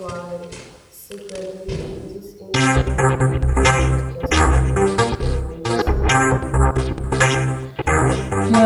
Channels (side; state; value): both; identical; correlation 1.00